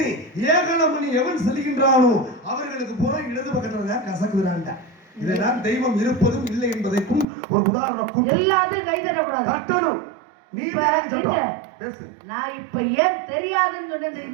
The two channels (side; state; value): left; drops out; at 7.2 s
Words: ஏகலமணி எவன் செல்கின்றானோ அவர்களுக்கு பூரா இடது பக்கத்துல தான் கசக்குறான்டா. இதெல்லாம் தெய்வம் இருப்பதும் இல்லை என்பதற்கும் ஒரு உதாரணம். எல்லாத்தையும் கை தட்டக்கூடாது, தட்டணும். நீ பேசு. நான் இப்ப ஏன் தெரியாதுன்னு சொன்னேன்